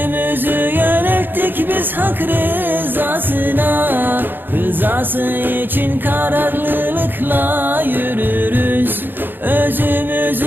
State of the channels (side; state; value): left; late; 0.095 ms